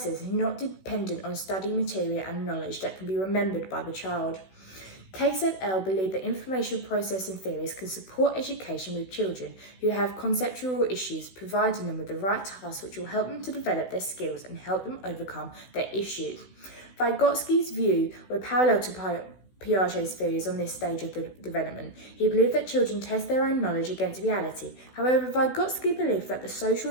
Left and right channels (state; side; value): late; right; 16 ms